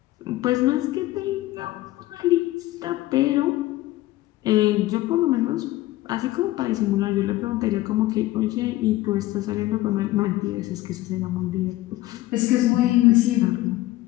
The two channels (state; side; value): quieter; right; 16.9 dB